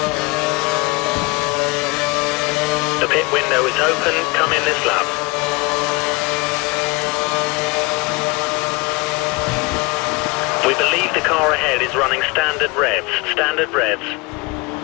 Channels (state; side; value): quieter; right; 25.9 dB